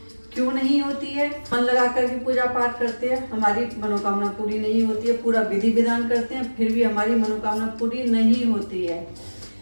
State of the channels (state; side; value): inverted; both; correlation -1.00